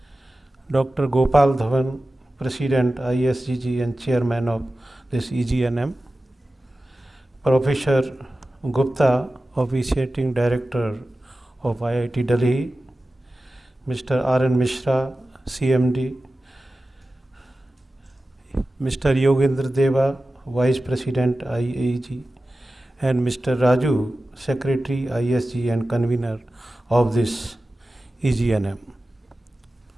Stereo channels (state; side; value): normal; both; correlation 0.95